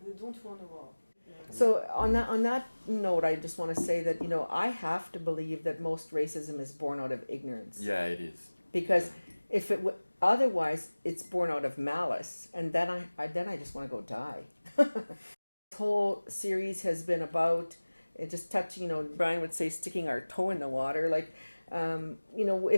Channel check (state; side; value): inverted; both; correlation -1.00